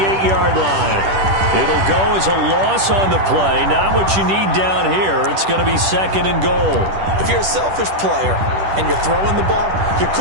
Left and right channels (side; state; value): left; late; 10 ms